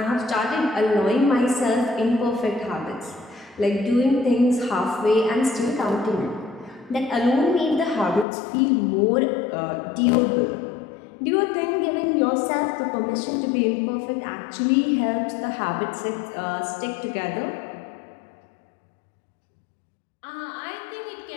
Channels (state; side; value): drops out; right; at 8.2 s